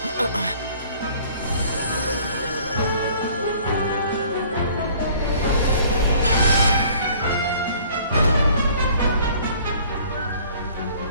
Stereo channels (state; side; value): inverted; both; correlation -0.54